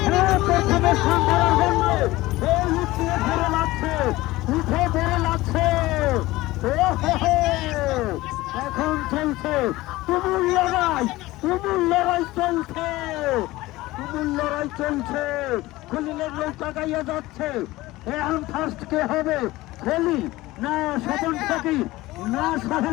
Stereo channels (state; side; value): quieter; right; 18.5 dB